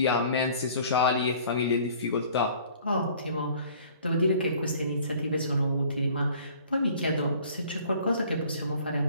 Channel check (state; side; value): inverted; both; correlation -0.52